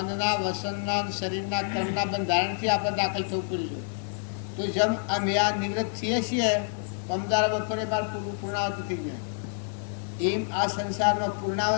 વસનના, શરીરના, કર્મના બંધારણથી આપણે દાખલ થવું પડ્યું છે. તો જેમ અમે આ નિવૃત્ત થઈએ છીએ, પમદારા બપોરે બાર પૂર્ણાવતી થઈ ગયા, એમ આ સંસારમાં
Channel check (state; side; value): silent; right; 59 dB below the other